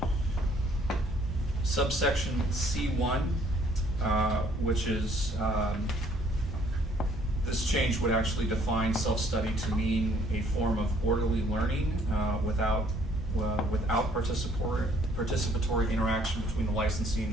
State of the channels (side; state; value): both; normal; correlation 0.62